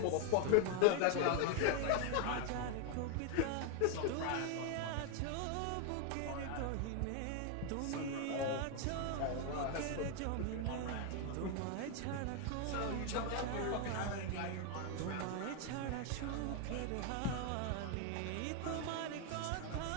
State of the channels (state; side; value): different; both; correlation 0.00